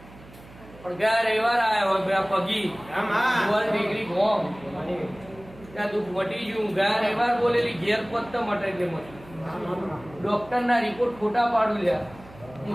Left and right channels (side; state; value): right; noise; hum, 21 dB below the sound